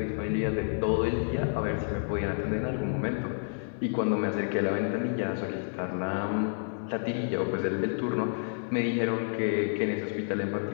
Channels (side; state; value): right; silent; digital silence